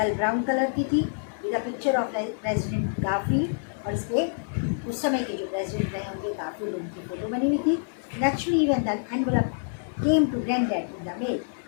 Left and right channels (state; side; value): silent; right; 60 dB below the other